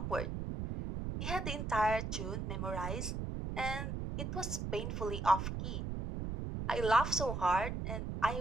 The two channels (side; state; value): right; noise; rumble, 3 dB below the sound